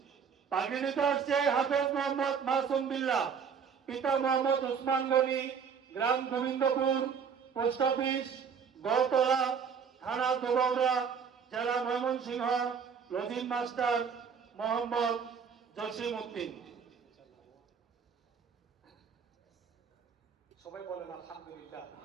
পাগড়ি নিতে আসছে হাফেজ মোহাম্মদ মাসুম বিল্লাহ, পিতা মোহাম্মদ ওসমান গনি, গ্রাম গোবিন্দপুর, পোস্ট অফিস গৌতলা, থানা ধুবাউড়া, জেলা ময়মনসিংহ। Lodging master Mohammad Jasim Uddin. সবাই বলেন আলহামদুলিল্লাহ।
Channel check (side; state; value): left; quieter; 6.6 dB